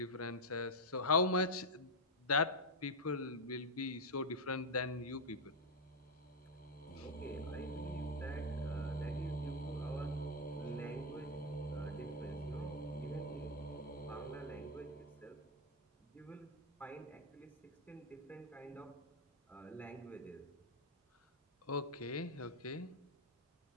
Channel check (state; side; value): normal; both; correlation 0.00